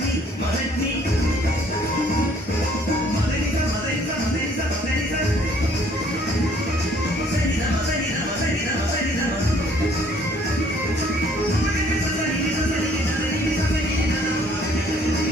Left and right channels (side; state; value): both; normal; correlation 0.60